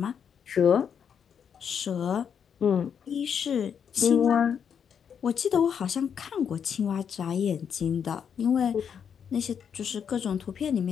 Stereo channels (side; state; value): right; quieter; 7.6 dB